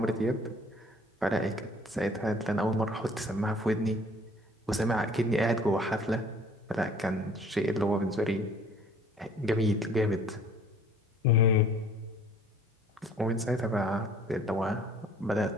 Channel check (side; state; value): both; normal; correlation 0.53